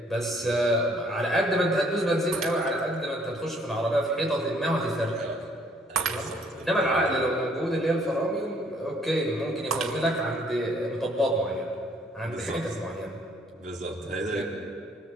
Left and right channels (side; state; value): both; normal; correlation 0.62